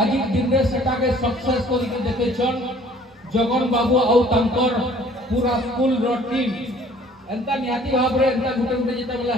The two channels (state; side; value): normal; both; correlation 0.55